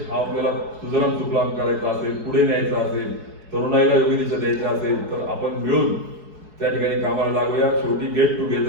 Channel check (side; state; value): left; late; 4.7 ms